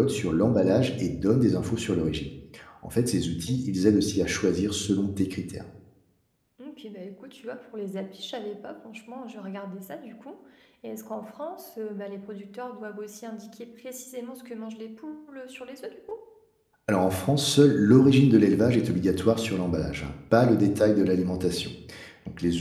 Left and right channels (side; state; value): both; identical; correlation 1.00